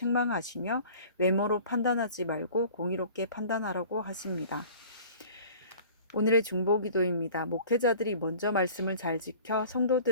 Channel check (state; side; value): inverted; both; correlation -0.46